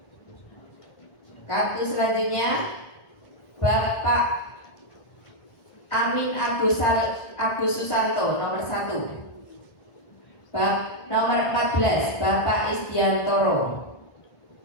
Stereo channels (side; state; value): right; late; 1.5 ms